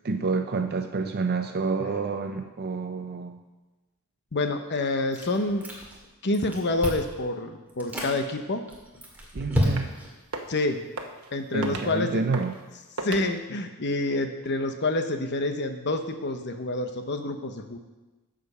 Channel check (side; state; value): both; normal; correlation 0.18